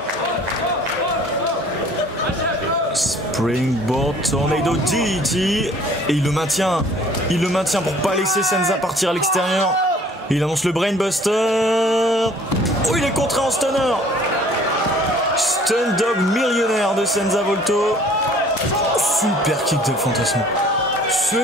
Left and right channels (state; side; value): normal; both; correlation 0.54